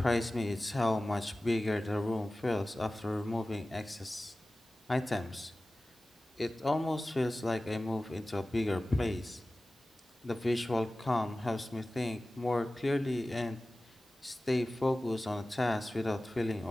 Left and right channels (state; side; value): normal; both; correlation 0.97